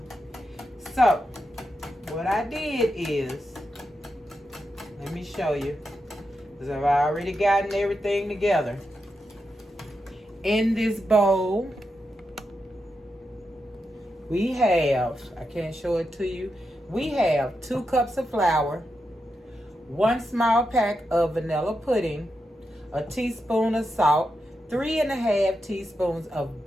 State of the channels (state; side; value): normal; both; correlation 0.86